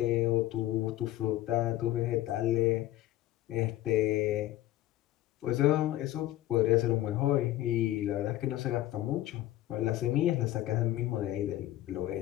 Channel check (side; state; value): right; quieter; 14.9 dB